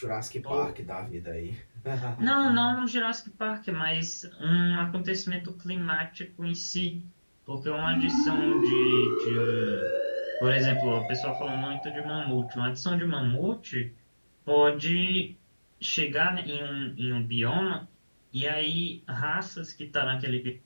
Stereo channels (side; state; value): both; inverted; correlation -1.00